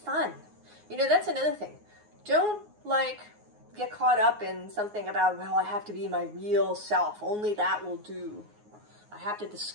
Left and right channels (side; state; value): left; late; 9.5 ms